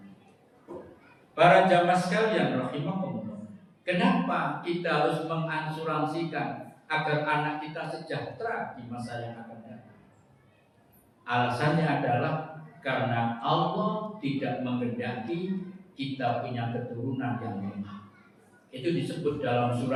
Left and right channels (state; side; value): identical; both; correlation 1.00